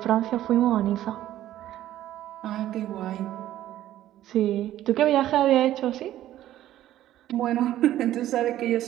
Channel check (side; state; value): left; quieter; 13.2 dB